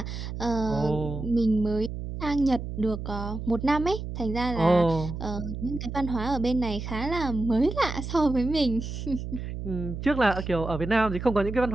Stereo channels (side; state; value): right; noise; hum, 7 dB below the sound